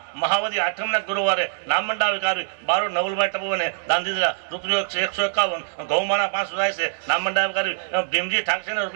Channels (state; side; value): silent; left; digital silence